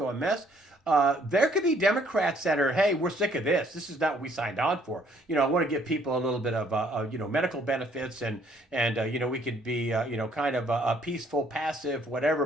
a mess. There could be Democrats that are, hey, we're sick of this. This is not what we signed on for. You know, I want to give people a little bit of, you know, medical benefits and you know, we could be, you know, kind of a peaceful, passive, whatever.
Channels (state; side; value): normal; both; correlation 0.64